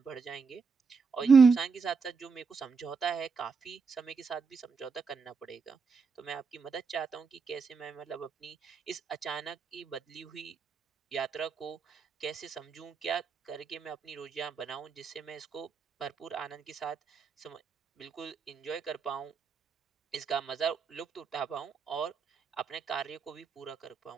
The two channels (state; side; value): quieter; left; 5.2 dB